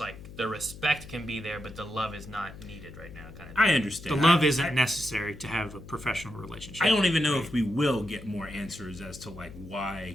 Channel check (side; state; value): left; noise; hum, 15 dB below the sound